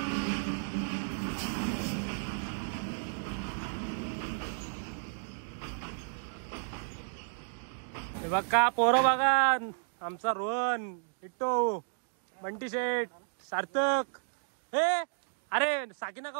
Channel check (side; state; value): left; silent; digital silence